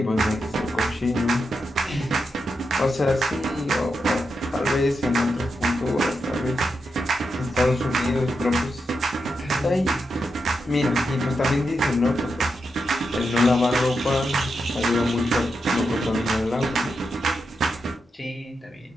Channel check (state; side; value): normal; both; correlation 0.86